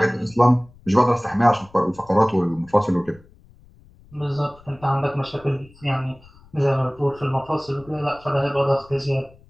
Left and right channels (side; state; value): left; noise; rumble, 26 dB below the sound